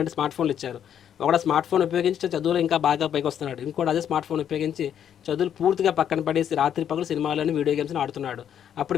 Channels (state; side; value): quieter; right; 9.3 dB